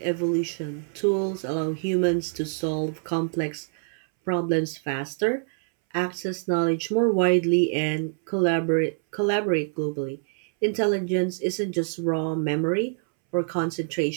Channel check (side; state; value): left; silent; 61 dB below the other